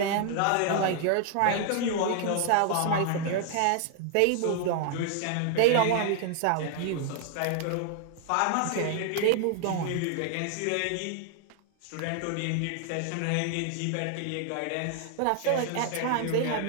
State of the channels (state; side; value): different; both; correlation 0.00